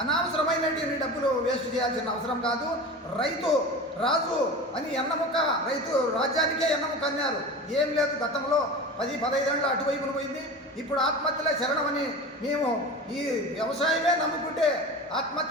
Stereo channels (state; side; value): normal; both; correlation 0.32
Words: అనవసరమైనటువంటి డబ్బులు వేస్ట్ చేయాల్సిన అవసరం కాదు. రైతు రాజు అని ఎన్నముక్క, రైతు రాజ్యానికే ఎన్నముక్క అన్నారు. ఏం లేదు, గతంలో 10-15 ఏళ్ళు అటువైపున పోయింది. ఇప్పుడు ఆత్మహత్యలే శరణమని మేము ఈ వ్యవసాయమే నమ్ముకుంటే